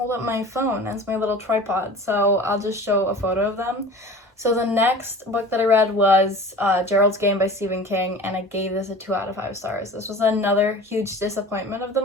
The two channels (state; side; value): normal; both; correlation 0.39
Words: up my phone as my little tripod, so I'll just show a photo of them. So the next book that I read was Geralds Game by Stephen King, and I gave this a 2 out of 5 stars. This was another huge disappointment of the